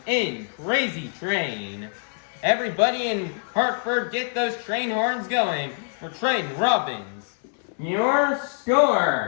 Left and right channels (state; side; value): silent; right; 62 dB below the other